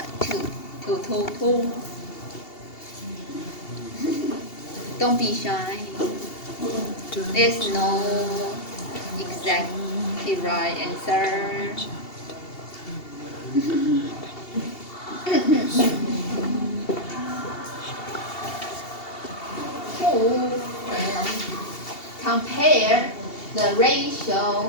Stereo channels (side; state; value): right; late; 2.7 ms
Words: Don't be shy. There's no exactly right answer. Who compare the